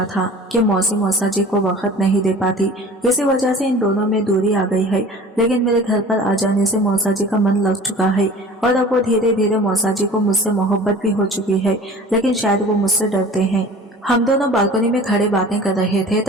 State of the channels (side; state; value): both; normal; correlation 0.43